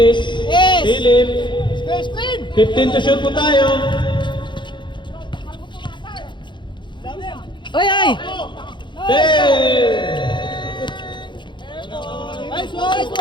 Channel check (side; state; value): right; late; 0.23 ms